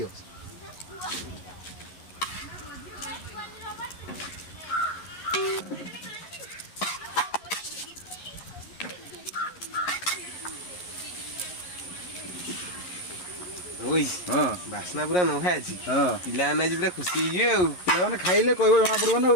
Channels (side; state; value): right; late; 11 ms